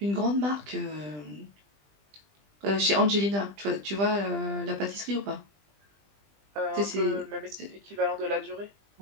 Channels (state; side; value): late; left; 20 ms